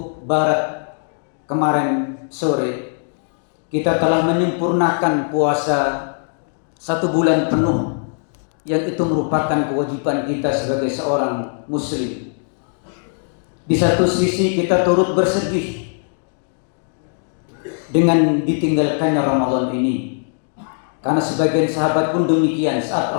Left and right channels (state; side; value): silent; right; 66 dB below the other